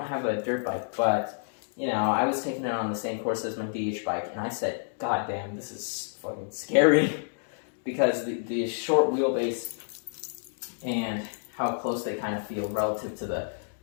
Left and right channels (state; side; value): silent; right; digital silence